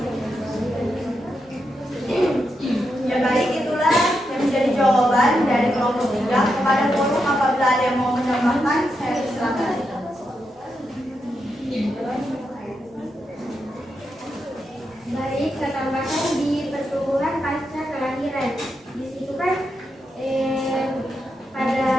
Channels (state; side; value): normal; both; correlation 0.85